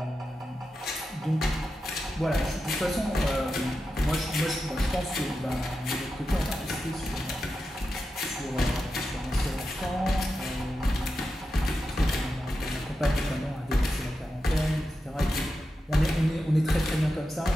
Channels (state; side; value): normal; both; correlation 0.90